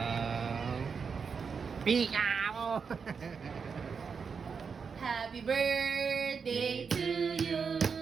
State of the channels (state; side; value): quieter; left; 5.8 dB